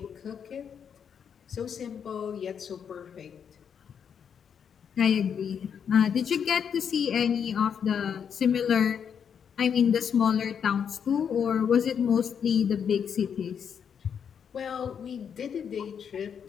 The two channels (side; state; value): right; quieter; 7.6 dB